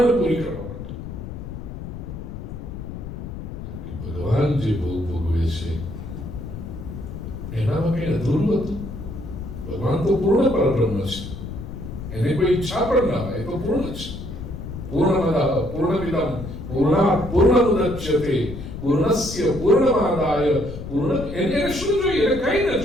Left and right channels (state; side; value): noise; left; rumble, 9 dB below the sound